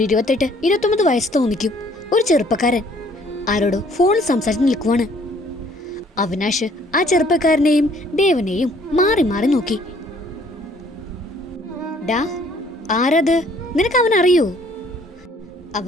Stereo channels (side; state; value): both; normal; correlation 0.60